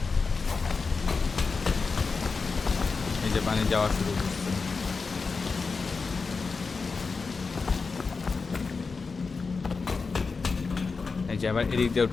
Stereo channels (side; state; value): right; quieter; 4.6 dB